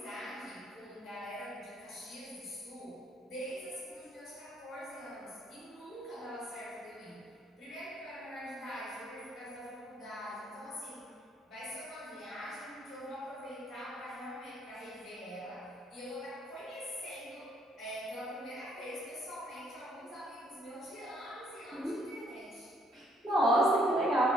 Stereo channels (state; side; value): normal; both; correlation 0.66